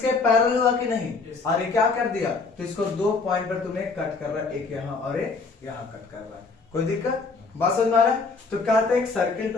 पैरेलल हुआ कि नहीं? और ये क्या कर दिया? तो इसको 2 पॉइंट पर तुम्हें कट कर रहा है, एक यहां और एक यहां कट कर रहा है। कोई दिक्कत? बात समझ में आ रहा है? तो कहते हैं एक सर्किल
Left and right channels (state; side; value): quieter; right; 4.3 dB